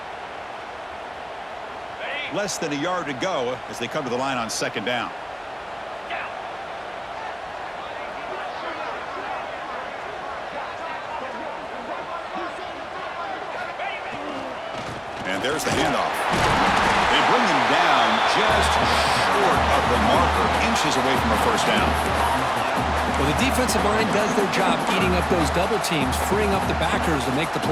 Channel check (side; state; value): both; identical; correlation 1.00